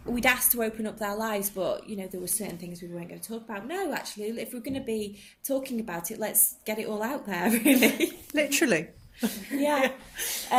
we'd asked to open up their lives, but, you know, there were certain things we weren't going to talk about. No, actually, if we're going to be talking about it, let's get it all out there, really. Literally. Yeah.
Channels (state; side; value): identical; both; correlation 1.00